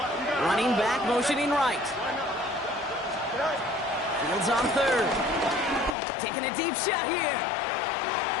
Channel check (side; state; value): right; drops out; at 6.0 s